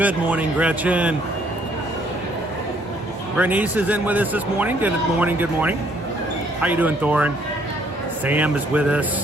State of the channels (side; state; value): both; normal; correlation 0.65